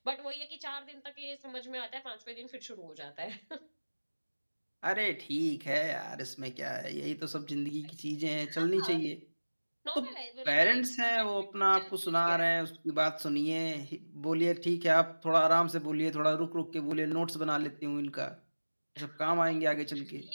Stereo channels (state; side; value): inverted; both; correlation -1.00